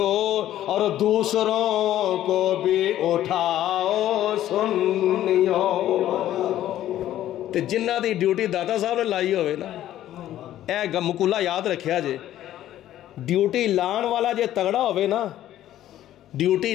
اور دوسروں کو بھی اٹھاؤ سنیوں۔ تے جنہ دی ڈیوٹی داتا صاحب نے لائی ہوئے نا، اے مقولہ یاد رکھیا جے، ڈیوٹی لان والا جے تگڑا ہوئے نا، ڈیوٹی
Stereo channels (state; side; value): quieter; right; 12.7 dB